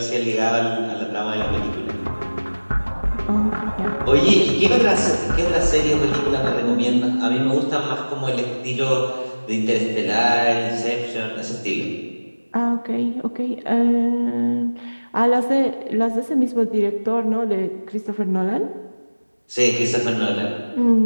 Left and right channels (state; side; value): inverted; both; correlation -1.00